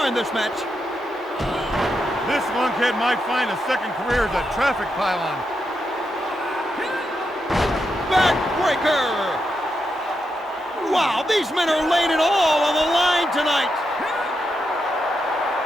in this match. This lunkhead might find a second career as a traffic pylon. Backbreaker! Wow, these men are laying it all on the line tonight.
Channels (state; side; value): normal; both; correlation 0.84